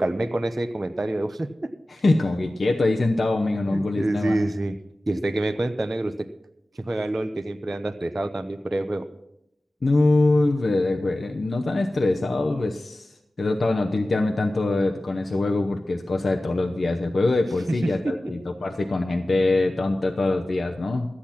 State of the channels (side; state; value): both; normal; correlation 0.96